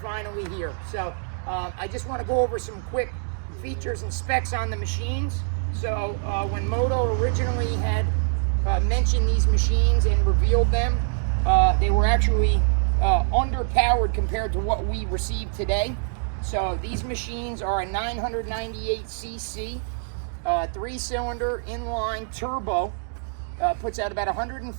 here. So I just want to go over some quick features and specs on the machines. So when Moto originally had mentioned these machines and revealed them, they were actually underpowered compared to what we received today. So these machines are a 998cc 3-cylinder inline turbo, puts out about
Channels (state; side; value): silent; left; digital silence